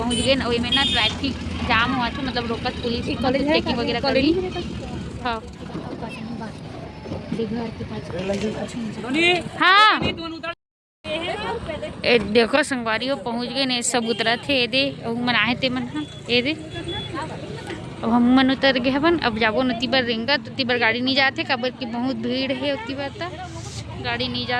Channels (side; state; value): both; identical; correlation 1.00